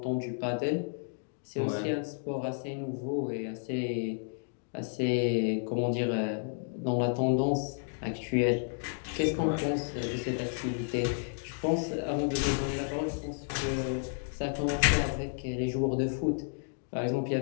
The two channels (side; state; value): right; silent; digital silence